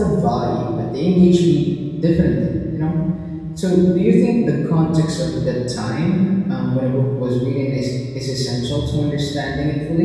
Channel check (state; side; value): identical; both; correlation 1.00